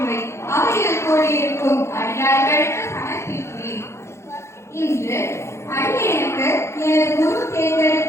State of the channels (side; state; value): right; late; 0.13 ms